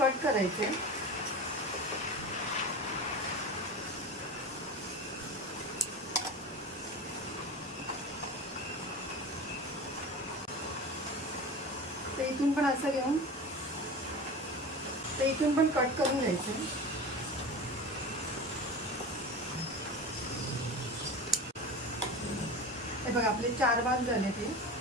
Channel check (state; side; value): normal; both; correlation 0.31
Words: करायचे। तर इथून पण असं घेऊन तर इथून पण कट करून घ्यायचं। हे बघा, आपले 4 भाग झाले ते।